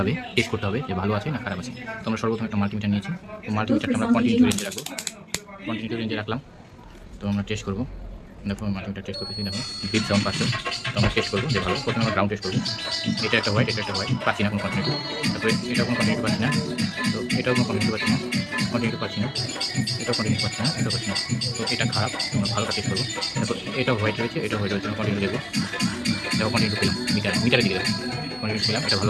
টেস্ট করতে হবে, যে ভালো আছে না খারাপ আছে। তো আমরা সর্বপ্রথম একটা মাল্টিমিটার নিয়েছি। তো মাল্টিমিটারটা আমরা কন্টিনিউ রেঞ্জে রাখবো, কন্টিনিউ রেঞ্জে রাখলাম। তো আমরা টেস্ট করবো। দেখো মাল্টিমিটার টেস্ট করতেছি, দেখো বিট সাউন্ড পাচ্ছে। তো আমরা টেস্ট করবো যে ভালো। প্রথমে আমরা গ্রাউন্ড টেস্ট করবো। এটা একটা হোয়াইট, এটা একটা হোয়াইট, পাচ্ছি না কোনো কন্টিনিউ। তারপরে এটাও কোনো কন্টিনিউ পাচ্ছি না, তো এটাও কোনো কন্টিনিউ পাচ্ছি না, কন্টিনিউ পাচ্ছি না, এটাও কন্টিনিউ পাচ্ছি না, এটাও পাচ্ছি না। তো এটা খারাপ, আমরা ভালোটা টেস্ট করবো। তারপর এটাও হোয়াইট রয়েছে, এটাও হোয়াইট রয়েছে, আমরা কন্টিনিউ দেবো। দেখো কন্টিনিউ পেলাম, মিটারের দিকে দেখো কন্টিনিউ পেলাম, এটা ভালো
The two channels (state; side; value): identical; both; correlation 1.00